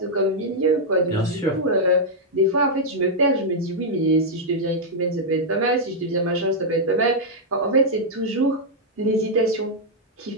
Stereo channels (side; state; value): both; normal; correlation -0.04